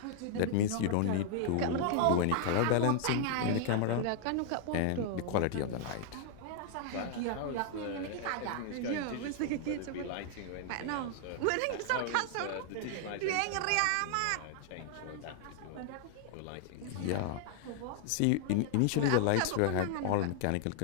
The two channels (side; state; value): both; different; correlation 0.00